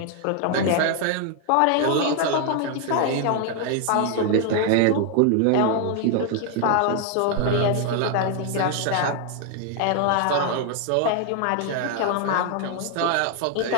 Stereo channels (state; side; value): different; both; correlation 0.00